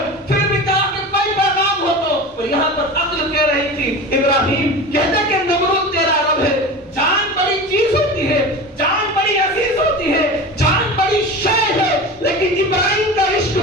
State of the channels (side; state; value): both; normal; correlation 0.31